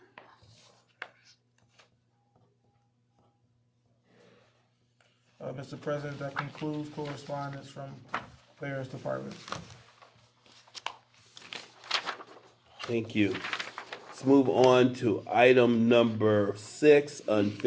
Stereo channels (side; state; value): both; identical; correlation 1.00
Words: Mr. President, that concludes correspondence from various departments. Thank you. Let's move on to item number 6,